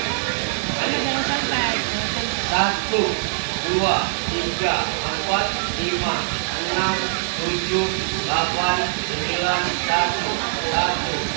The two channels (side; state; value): left; silent; 64 dB below the other